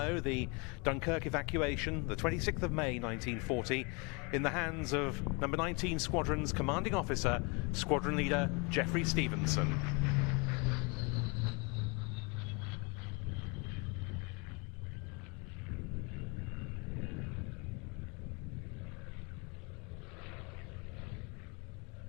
the Dunkirk evacuation, the 26th of May 1940, in the hands of number 19 Squadron's commanding officer, Squadron Leader Geoffrey Stevenson.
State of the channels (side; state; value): right; quieter; 30.9 dB